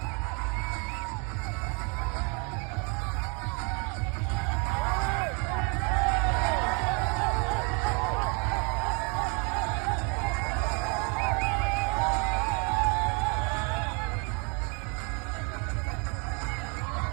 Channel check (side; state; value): left; quieter; 33.9 dB